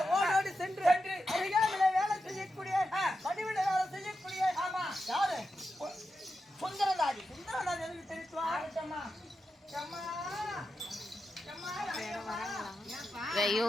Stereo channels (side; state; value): both; normal; correlation 0.89